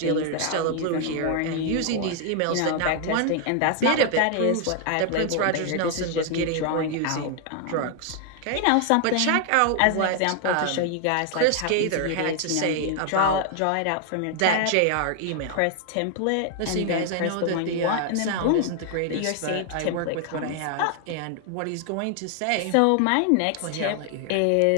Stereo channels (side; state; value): both; different; correlation 0.00